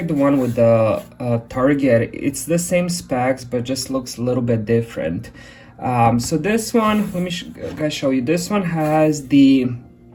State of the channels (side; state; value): both; identical; correlation 1.00